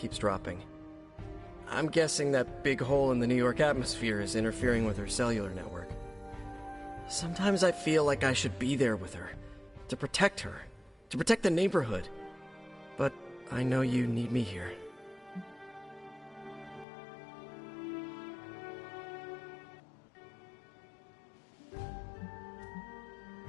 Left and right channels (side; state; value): right; drops out; at 16.9 s